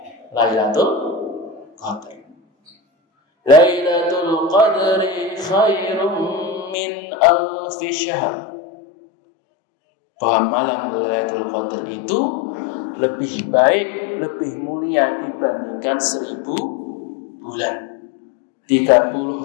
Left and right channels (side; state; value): right; drops out; at 6.8 s